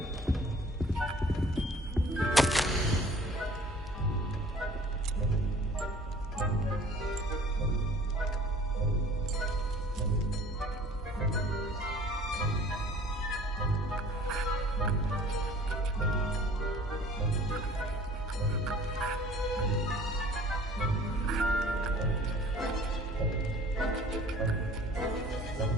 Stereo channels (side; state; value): both; normal; correlation 0.50